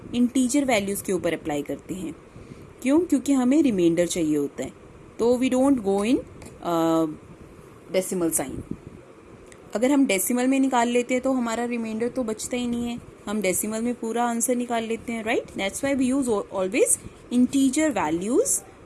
इंटीजर वैल्यूज के ऊपर अप्लाई करते हैं। क्यों? क्योंकि हमें रिमाइंडर चाहिए होता है, तो we don't go in decimal sign. अगर हम डेसिमल में निकाल लेते हैं तो हमारा रिमाइंडर तो बचता ही नहीं है, हम डेसिमल में पूरा आंसर निकाल लेते हैं, right? That's why we use always integer values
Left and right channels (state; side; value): identical; both; correlation 1.00